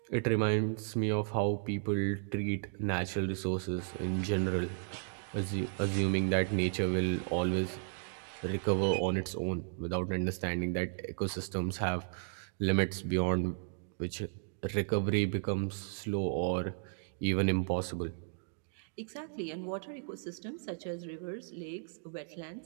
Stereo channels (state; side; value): silent; left; digital silence